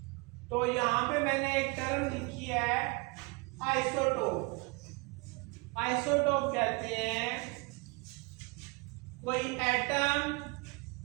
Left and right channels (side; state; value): left; quieter; 27.3 dB